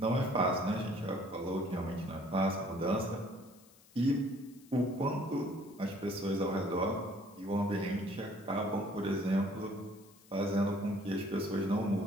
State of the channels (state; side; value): noise; left; hiss, 26 dB below the sound